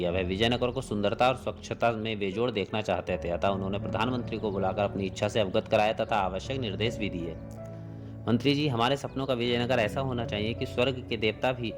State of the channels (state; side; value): identical; both; correlation 1.00